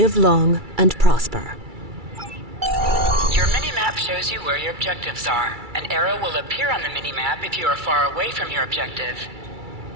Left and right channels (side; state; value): left; late; 2.3 ms